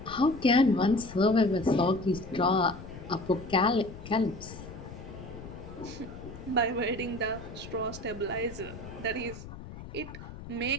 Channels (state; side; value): noise; left; rumble, 13 dB below the sound